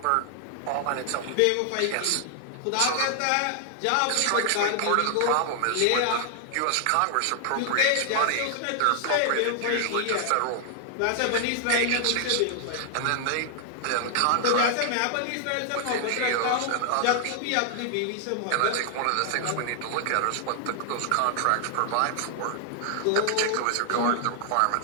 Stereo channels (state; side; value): different; both; correlation 0.00